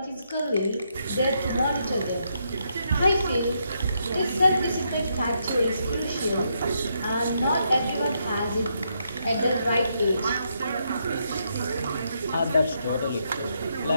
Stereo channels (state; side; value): inverted; both; correlation -0.78